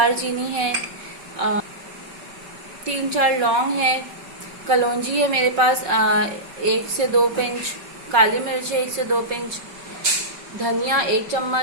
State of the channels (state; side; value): late; left; 5.4 ms